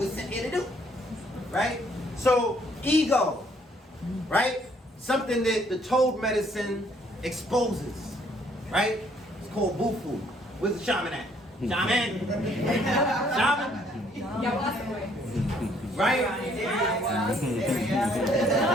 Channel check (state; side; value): normal; both; correlation 0.65